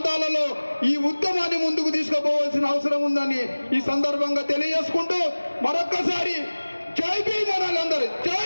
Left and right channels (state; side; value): inverted; both; correlation -1.00